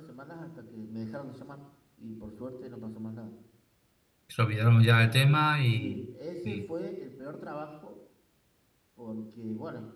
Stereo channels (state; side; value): identical; both; correlation 1.00